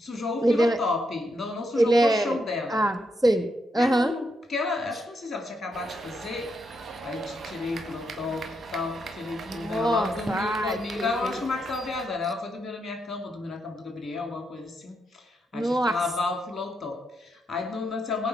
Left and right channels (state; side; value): normal; both; correlation 0.81